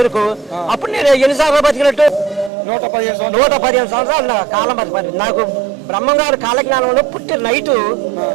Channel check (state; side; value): drops out; left; at 2.5 s